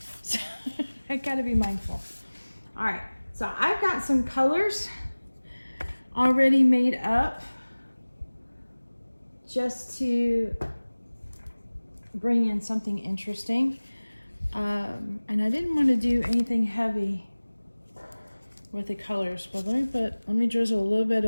so I gotta be mindful. All right, so I've got some colors already made up just to bring in something interesting. And I didn't want to do anything heavy with the colors, but let me drizzle a little bit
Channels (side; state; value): both; inverted; correlation -1.00